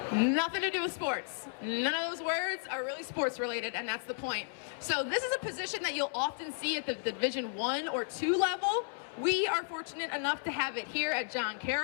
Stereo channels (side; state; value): right; silent; 55 dB below the other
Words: Nothing to do with sports. None of those words are really sports related, and that's the point. So this is a position that you'll often see at the Division I or II level. We are fortunate enough to have it here at John